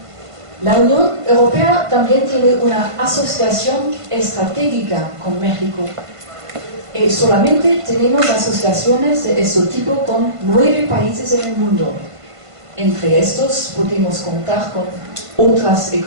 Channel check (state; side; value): late; left; 1.5 ms